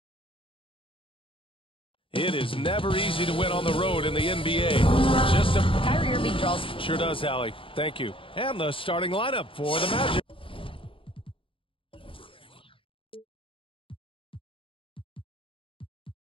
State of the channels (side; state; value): right; late; 0.26 ms